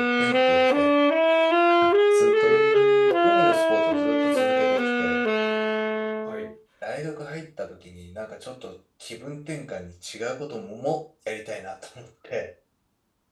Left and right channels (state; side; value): identical; both; correlation 1.00